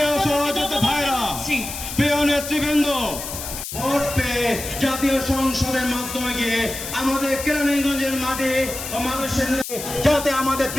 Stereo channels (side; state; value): left; noise; hiss, 8 dB below the sound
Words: সহযোদ্ধা ভাইরা, প্রিয় নেতৃবৃন্দ, ভোট পেয়ে জাতীয় সংসদের মাধ্যমে গিয়ে আমাদের কেরানীগঞ্জের মাঠে মানুষের যাতে আমাদের